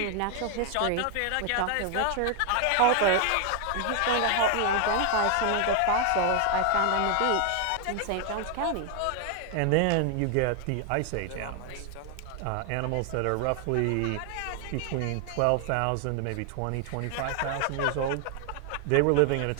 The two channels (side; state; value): both; different; correlation 0.00